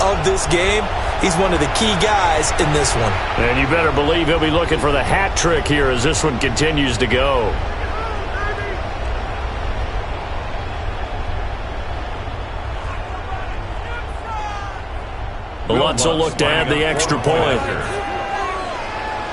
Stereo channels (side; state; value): both; identical; correlation 1.00